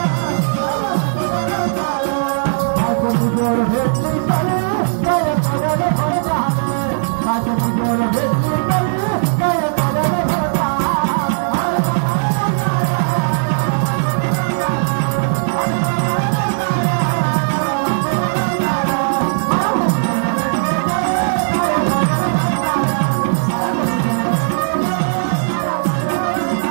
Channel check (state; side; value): silent; left; digital silence